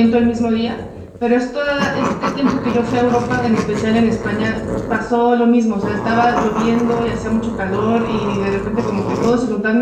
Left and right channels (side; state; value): both; identical; correlation 1.00